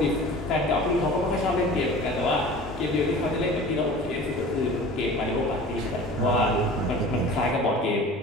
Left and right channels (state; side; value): normal; both; correlation 0.40